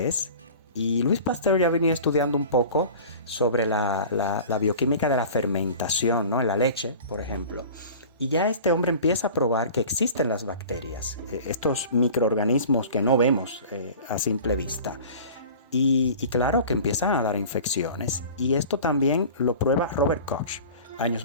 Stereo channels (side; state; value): both; inverted; correlation -0.40